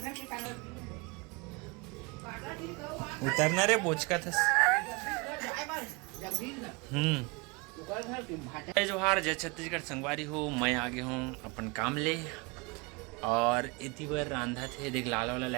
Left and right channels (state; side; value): quieter; left; 28.3 dB